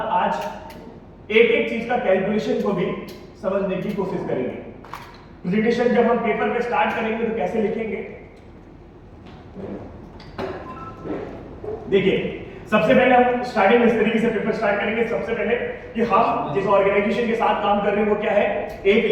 आज एक एक चीज का कैलकुलेशन को भी समझने की कोशिश करेंगे। प्रेजेंटेशन जब हम पेपर पे स्टार्ट करेंगे तो कैसे लिखेंगे? देखिए, सबसे पहले हम स्टार्टिंग इस तरीके से पेपर स्टार्ट करेंगे। सबसे पहले कि हम जिस ऑर्गेनाइजेशन के साथ काम कर रहे हैं वो क्या है? एक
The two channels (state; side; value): identical; both; correlation 1.00